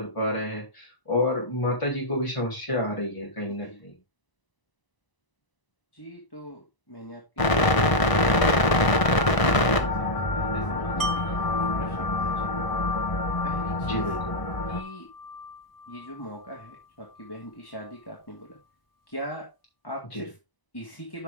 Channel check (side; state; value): right; late; 1.0 ms